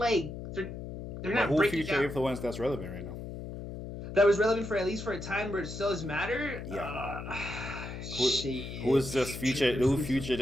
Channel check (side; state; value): left; noise; hum, 9 dB below the sound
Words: they're not who breaking future down. influence that's relevant right now? That was relevant for at least for a time where it still does matter. Yeah. Shit. Who is just future? Who future